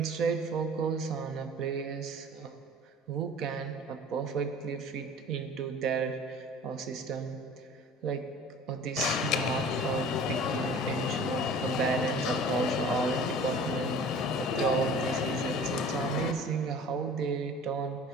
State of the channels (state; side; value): normal; both; correlation 0.44